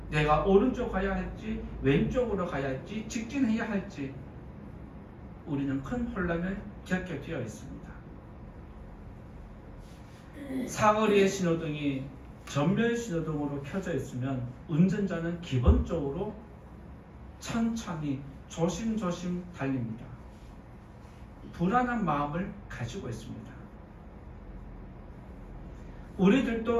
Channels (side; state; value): both; identical; correlation 1.00